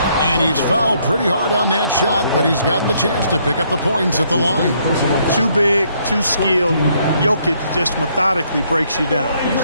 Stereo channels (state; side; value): inverted; both; correlation -0.69